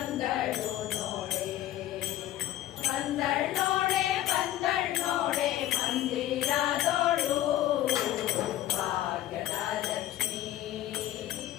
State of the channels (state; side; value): quieter; right; 13.6 dB